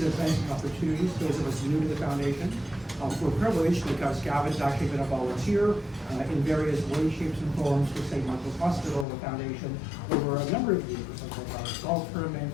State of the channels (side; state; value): right; drops out; at 9.1 s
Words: of events and opportunities, those of us new to the foundation, we're privileged because Gavin's actually been a volunteer in various ways, shapes, and forms for St. Michael's Hospital, the foundation, over a number of years, like our golf tournament,